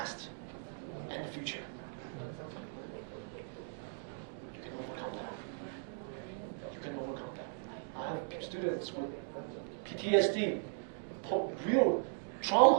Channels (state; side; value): silent; left; digital silence